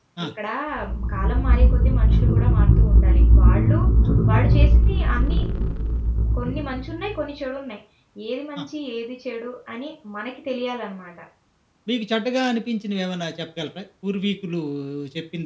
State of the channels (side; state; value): both; identical; correlation 1.00